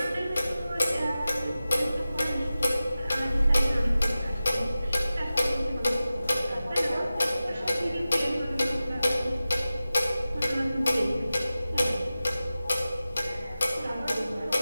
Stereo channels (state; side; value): inverted; both; correlation -0.95